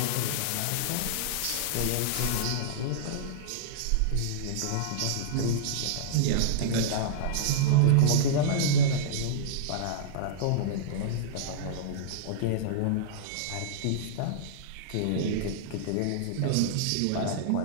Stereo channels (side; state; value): both; different; correlation -0.02